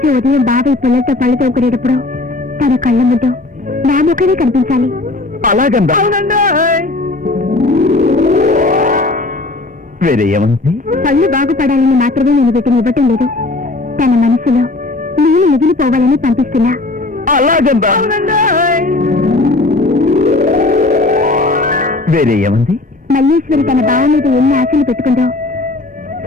ఉదయం బావి పిల్లలతో పళ్ళు తోముకునేటప్పుడు తన కళ్ళ ముందు నా ముఖమే కనిపించాలి. అలాగందా? వేరే ఏమంది? పళ్ళు బాగుపడాలని మాత్రమే నేను వీటిని ఇవ్వటం లేదు, తన మనసులో నేను మిగిలిపోవాలని పంపిస్తున్నా. అలాగందా? వేరే ఏమంది? మల్లేశ్వరి తన బావ మీద ఎన్ని ఆశలు పెట్టుకుందో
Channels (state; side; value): quieter; right; 3.1 dB